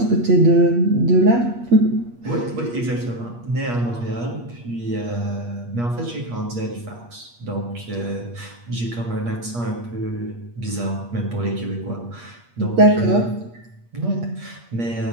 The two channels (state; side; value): late; left; 8.5 ms